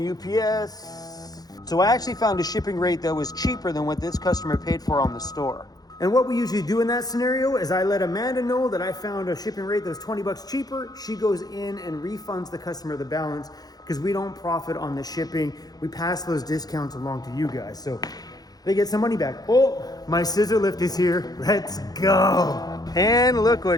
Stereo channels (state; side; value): late; right; 0.19 ms